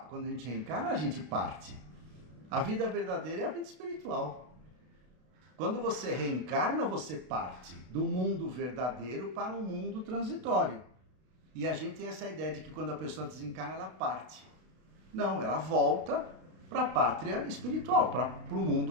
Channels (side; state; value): left; late; 32 ms